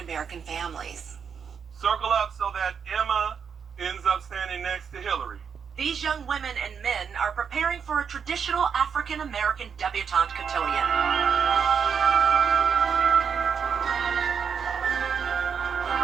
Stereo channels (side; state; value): left; quieter; 6.7 dB